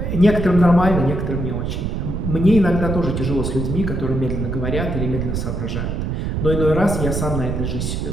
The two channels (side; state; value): right; noise; rumble, 2 dB below the sound